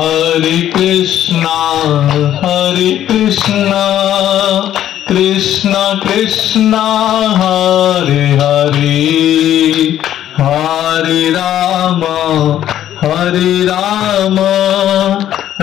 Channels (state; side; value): quieter; right; 11.6 dB